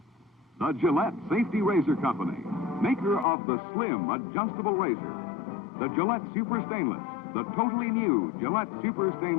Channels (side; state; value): right; drops out; at 3.2 s